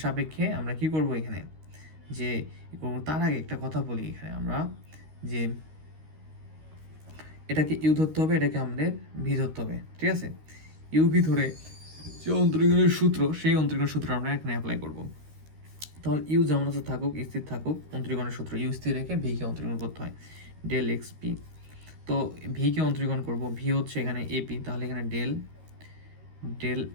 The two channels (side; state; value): left; late; 13 ms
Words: সাপেক্ষে আমরা কি করব এখানে, যে তার আগে একটা কথা বলি এখানে আমরা, যে এটাকে ইউ ধরতে হবে, এটাকে আমাদের ভি ধরতে হবে। ঠিক আছে, ইউ ভি ধরে যে অন্তরীকরণের সূত্র, সেই অন্তরীকরণের সূত্র আমরা এখানে অ্যাপ্লাই করব। তাহলে ইউ যেমন আছে থাকুক, স্থির থাকুক, অন্তরীকরণের সূত্র ইউ স্থির রেখে ভিকে অন্তরীকরণ করতে হয়, ডেল এক্স পি। তো ভিকে অন্তরীকরণ করব, ভি হচ্ছে এখানে এপি, তাহলে এখানে ডেল